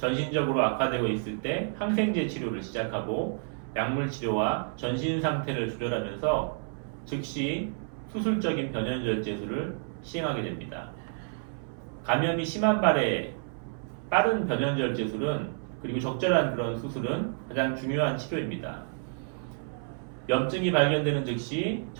악화되고 있을 때 항생제 치료를 시작하고 약물 치료와 전신 상태를 조절하면서 즉시 수술적인 변연절제술을 시행하게 됩니다. 감염이 심한 발에 빠른 변연절제술은 그리고 적절한 그런 수술은 가장 중요한 치료입니다. 염증이 발견되는 즉시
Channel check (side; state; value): left; silent; 58 dB below the other